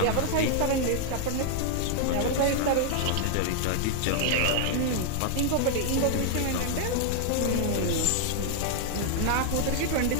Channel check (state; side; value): different; both; correlation 0.00